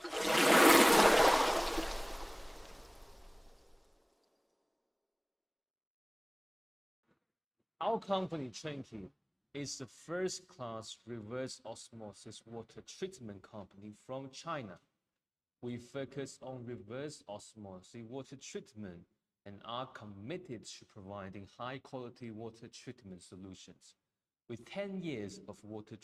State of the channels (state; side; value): identical; both; correlation 1.00